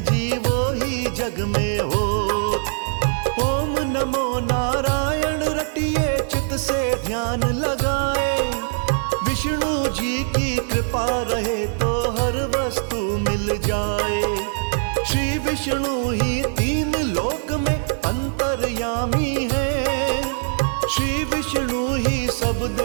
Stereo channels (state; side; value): silent; left; digital silence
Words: जी वो ही जग में हो। ओम नमो नारायण रटिए चित से ध्यान लगाए, विष्णु जी की कृपा रहे तो हर वस्तु मिल जाए। श्री विष्णु ही 3 लोक में अंतर्यामी है, श्री विष्णु ही सब